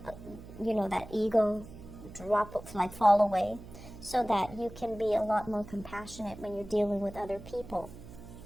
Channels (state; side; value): noise; right; hum, 16 dB below the sound